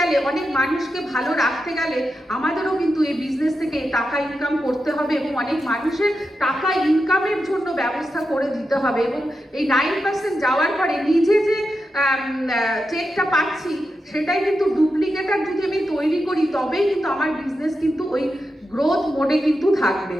অনেক মানুষকে ভালো রাখতে গেলে আমাদেরও কিন্তু এই বিজনেস থেকে টাকা ইনকাম করতে হবে এবং অনেক মানুষের টাকা ইনকামের জন্য ব্যবস্থা করে দিতে হবে। এবং এই 9% যাওয়ার পরে নিজে যে চেকটা পাচ্ছি সেটাই কিন্তু ডুপ্লিকেটার যদি আমি তৈরি করি তবেই কিন্তু আমার বিজনেস কিন্তু ওই গ্রোথ মোডে কিন্তু থাকবে।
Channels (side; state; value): both; normal; correlation 0.88